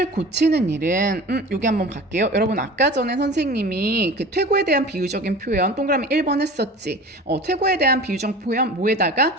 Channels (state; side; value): normal; both; correlation 0.38